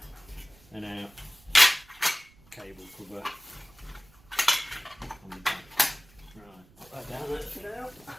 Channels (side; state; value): right; noise; rumble, 27 dB below the sound